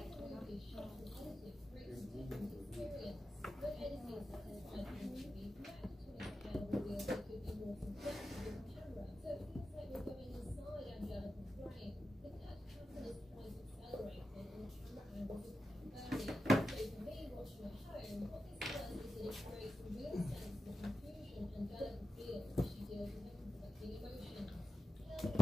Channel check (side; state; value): both; normal; correlation 0.92